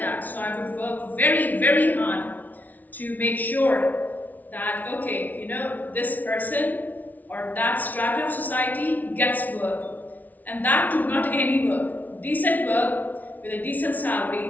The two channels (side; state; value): right; late; 0.078 ms